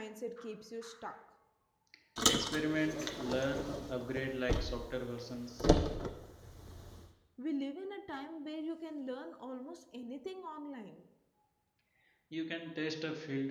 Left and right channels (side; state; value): both; identical; correlation 1.00